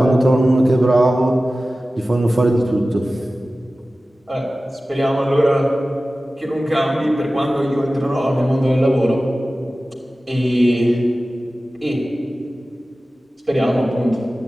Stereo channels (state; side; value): normal; both; correlation 0.96